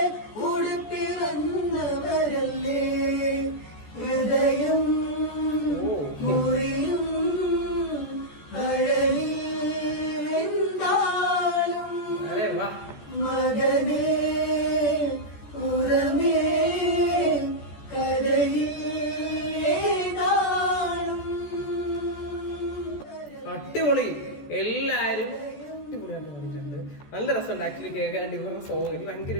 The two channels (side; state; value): right; late; 14 ms